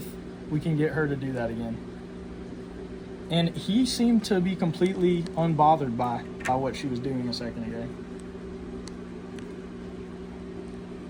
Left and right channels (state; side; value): identical; both; correlation 1.00